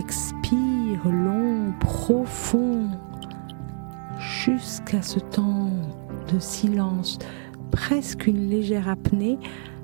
long, profond, jusqu'à ce temps de silence, presque une légère apnée,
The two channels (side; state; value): left; silent; digital silence